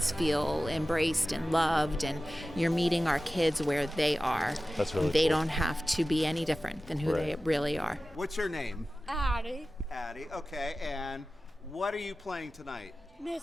feel embraced and loved, and you're meeting our kids where they are. That's really They cool. don't have to be any different than who they really are. What's your name? Addie. Addie. Okay, and what are you playing tonight?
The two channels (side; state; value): both; normal; correlation 0.95